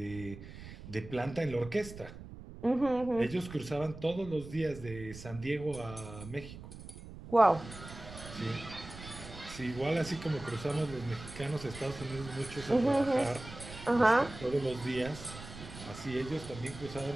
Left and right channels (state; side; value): noise; right; rumble, 14 dB below the sound